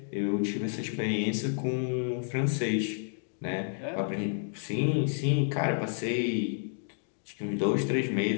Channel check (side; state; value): right; silent; digital silence